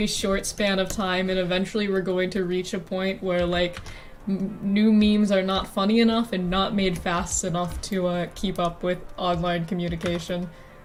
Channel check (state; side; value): identical; both; correlation 1.00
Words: short span of time, and eventually we're going to reach a point where like new memes are not funny enough and not made fast enough to keep up with online communication.